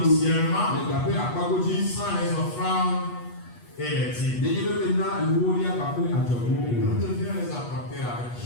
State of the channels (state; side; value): late; right; 8.3 ms